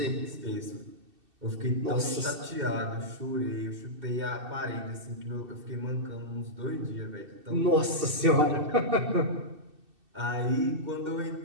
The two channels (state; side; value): late; left; 2.7 ms